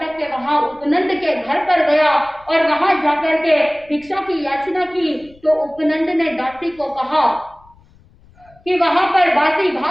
के वहां उपनंद के घर पर गया और वहां जाकर के भिक्षा की याचना की। तो उपनंद ने दासी को कहा कि वहां पर बासी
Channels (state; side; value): noise; left; rumble, 28 dB below the sound